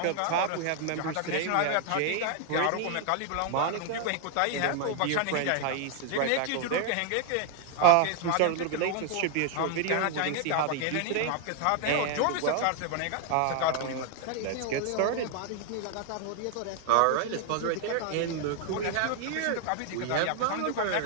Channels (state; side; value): different; both; correlation 0.00